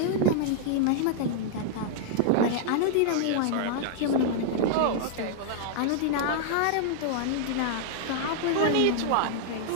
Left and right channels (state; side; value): different; both; correlation -0.01